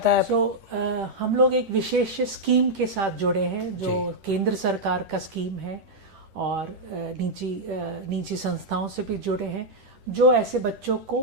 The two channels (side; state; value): left; late; 10 ms